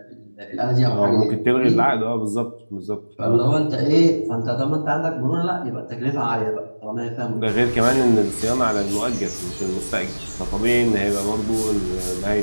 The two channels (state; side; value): inverted; both; correlation -1.00